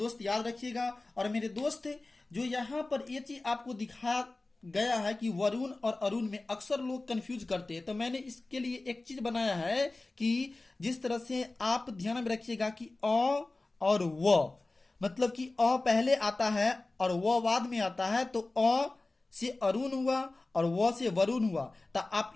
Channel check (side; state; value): right; quieter; 3.1 dB